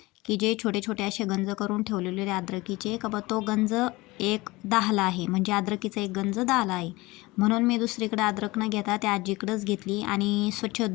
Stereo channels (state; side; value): quieter; right; 21.6 dB